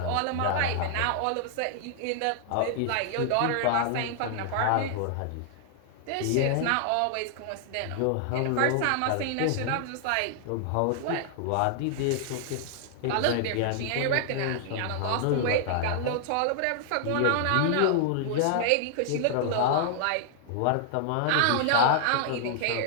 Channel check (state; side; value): different; both; correlation -0.01